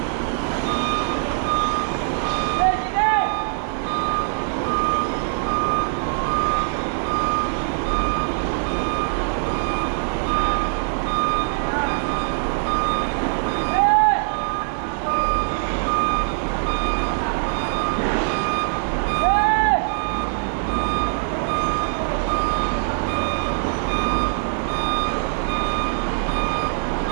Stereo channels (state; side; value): silent; left; digital silence